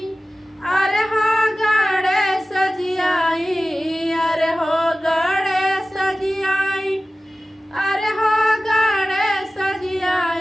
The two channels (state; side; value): normal; both; correlation 0.96